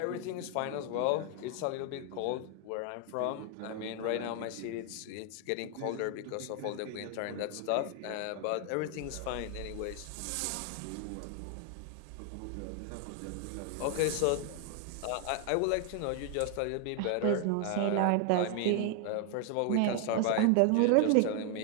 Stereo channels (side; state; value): both; different; correlation 0.00